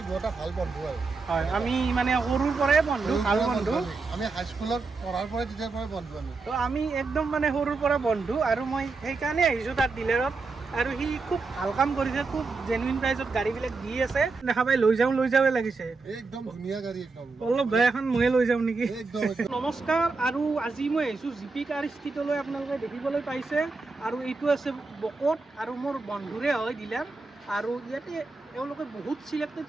দুটা ভাল বন্ধু আৰু হয় আমি মানে সৰুৰ পৰাই বন্ধু ভাল বন্ধু আমি হাই স্কুলত পঢ়াৰ পৰাই তেতিয়াৰ পৰাই বন্ধু তো আমি একদম মানে সৰুৰ পৰা বন্ধু আৰু মই সেইকাৰণে আহিছোঁ তাত ডিলাৰত আৰু সি খুব ভাল কাম কৰিছে খুব জেনুইন প্ৰাইজত গাড়ীবিলাক দি আছে দেখা পাই লৈ যাওঁৱে লাগিছে একদম ধুনীয়া গাড়ী একদম অলপ বেয়া এখন ময়ে লৈ যাওঁ নেকি একদম নমস্কাৰ আৰু আজি মই আহিছোঁ জিপি কাৰ ষ্ট্ৰীটলৈ আপোনালোকে দেখিবলৈ পাইছে আৰু এইটো আছে বকত আৰু মোৰ বন্ধুৰে হয় ডিলাৰ আৰু ইয়াতে এওঁলোকে বহুত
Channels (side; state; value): left; quieter; 4.0 dB